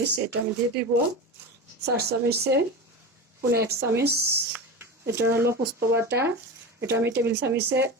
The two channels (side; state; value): both; normal; correlation 0.26